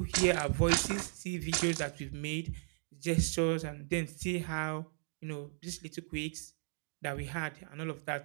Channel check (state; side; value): silent; left; 54 dB below the other